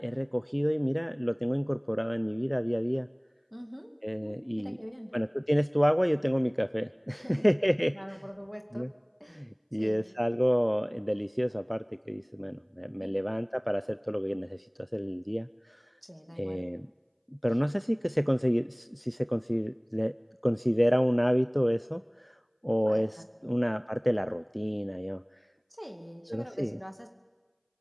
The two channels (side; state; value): both; identical; correlation 1.00